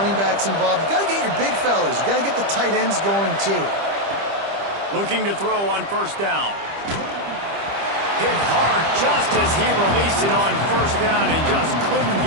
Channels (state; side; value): late; left; 25 ms